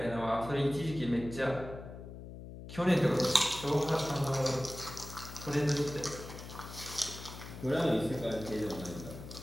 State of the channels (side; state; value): left; noise; hum, 12 dB below the sound